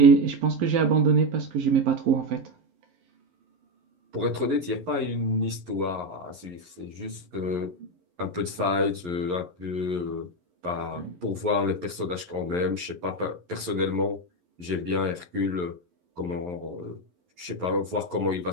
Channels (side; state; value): left; late; 11 ms